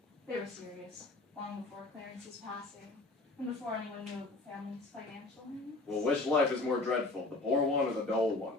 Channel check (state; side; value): quieter; right; 3.1 dB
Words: They were serious, long before Clarence's passing, and before anyone knew of the family's financial needs. Well, which life is more dreadful, the poor one or the dull